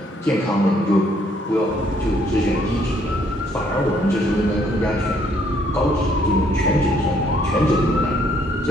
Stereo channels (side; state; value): both; normal; correlation 0.67